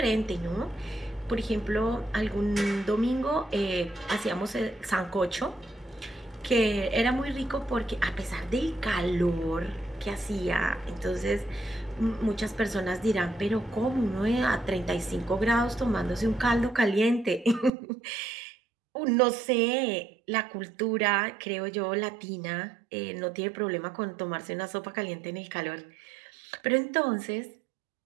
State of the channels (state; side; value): drops out; left; at 17.7 s